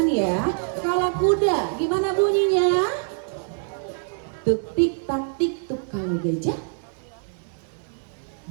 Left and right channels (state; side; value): silent; left; digital silence